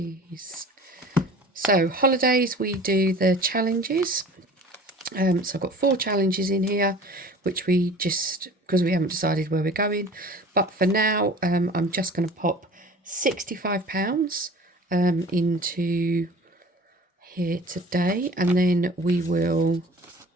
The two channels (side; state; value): both; normal; correlation 0.44